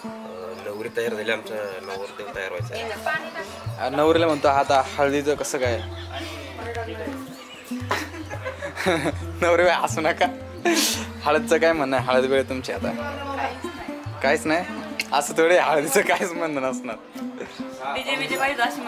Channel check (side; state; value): both; identical; correlation 1.00